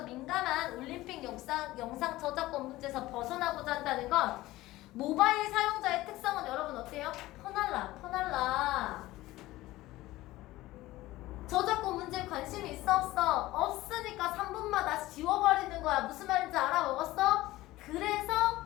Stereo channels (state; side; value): quieter; right; 17.5 dB